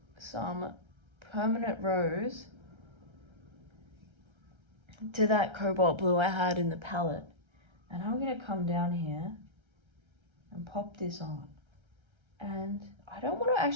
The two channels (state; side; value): late; left; 1.3 ms